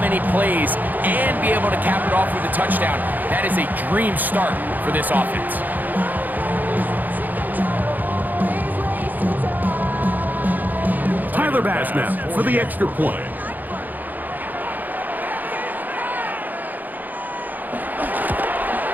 plays and be able to cap it off with a touchdown, that is a dream start for this offense. Tyler Bass now for the extra point.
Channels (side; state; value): left; late; 0.084 ms